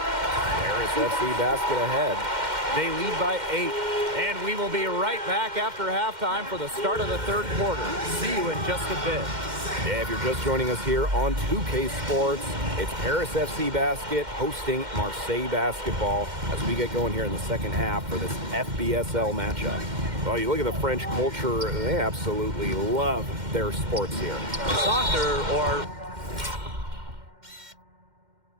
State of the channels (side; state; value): left; late; 2.1 ms